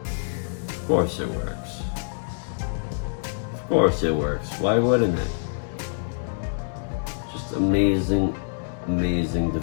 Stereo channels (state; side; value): silent; right; digital silence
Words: Of course it works. Of course it works. Why wouldn't it? Just amazing, amazing